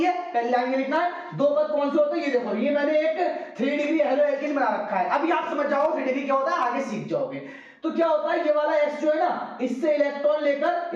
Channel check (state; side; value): identical; both; correlation 1.00